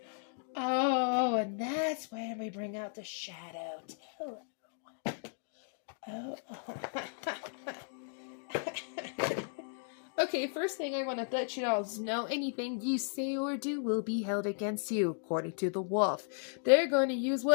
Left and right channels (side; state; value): right; silent; digital silence